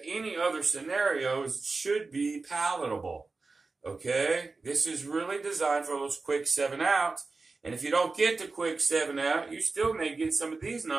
Any other scenarios should be palatable. Okay? This is really designed for those quick 7 outs. And if you don't get the quick 7 out, you still may get some of these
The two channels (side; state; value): left; quieter; 3.9 dB